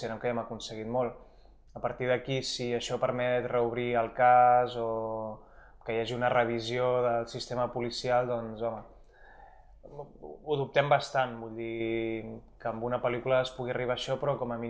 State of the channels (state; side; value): identical; both; correlation 1.00